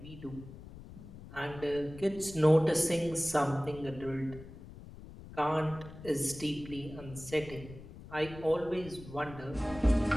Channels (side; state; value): left; noise; rumble, 15 dB below the sound